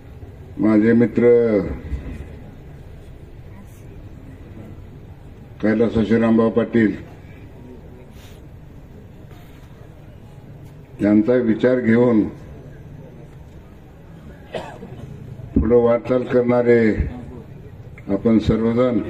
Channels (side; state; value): both; identical; correlation 1.00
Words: माझे मित्र कैलास श्रीरामभाऊ पाटील यांचा विचार घेऊन पुढे वाटचाल करणारे आपण सर्वजण